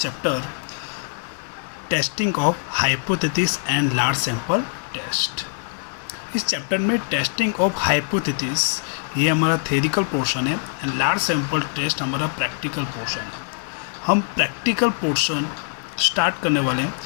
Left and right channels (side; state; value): right; silent; digital silence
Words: testing of hypothesis and large sample test. इस चैप्टर में टेस्टिंग ऑफ हाइपोथेसिस ये हमारा थ्योरिटिकल पोर्शन है एंड लार्ज सैंपल टेस्ट हमारा प्रैक्टिकल पोर्शन है। हम प्रैक्टिकल पोर्शन स्टार्ट करने वाले हैं